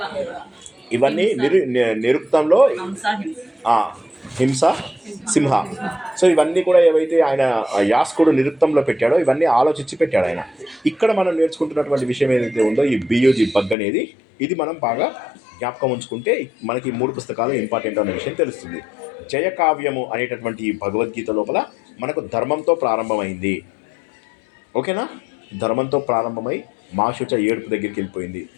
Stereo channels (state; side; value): drops out; right; at 13.8 s